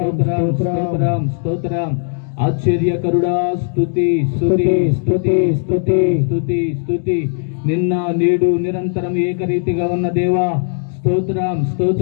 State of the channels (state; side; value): silent; right; 68 dB below the other